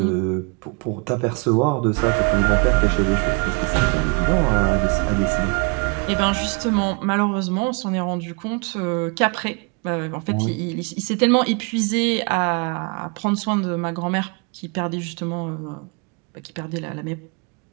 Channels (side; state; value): left; quieter; 33.6 dB